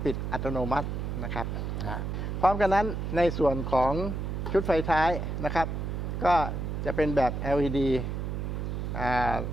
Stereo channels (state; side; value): noise; right; hum, 3 dB below the sound